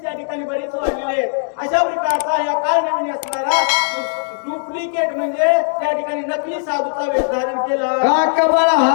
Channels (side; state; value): right; silent; digital silence